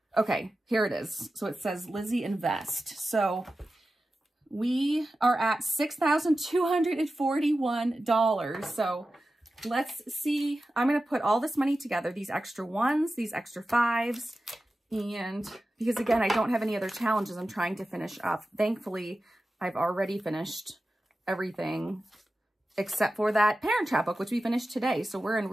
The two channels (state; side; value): normal; both; correlation 0.93